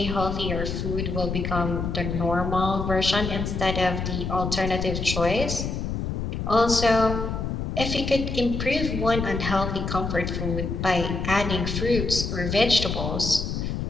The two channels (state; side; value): noise; left; rumble, 3 dB below the sound